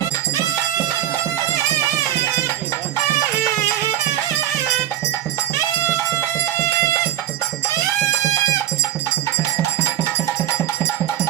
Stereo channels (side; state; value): left; quieter; 12.3 dB